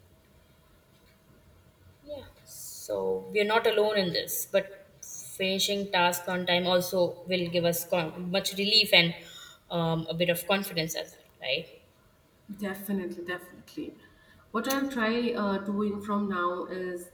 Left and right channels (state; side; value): identical; both; correlation 1.00